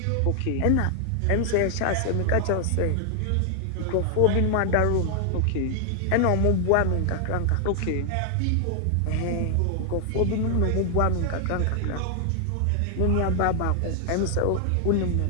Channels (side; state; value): both; different; correlation 0.00